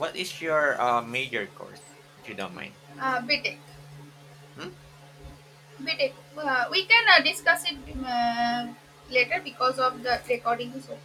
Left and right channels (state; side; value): identical; both; correlation 1.00